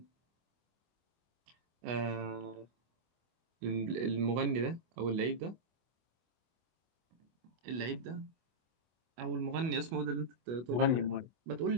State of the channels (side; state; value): left; late; 25 ms